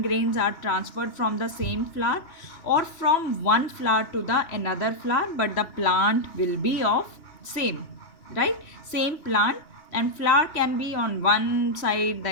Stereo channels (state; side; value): late; right; 2.8 ms